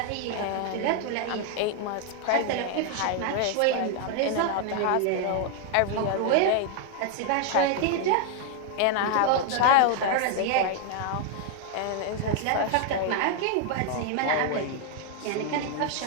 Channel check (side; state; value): both; different; correlation 0.00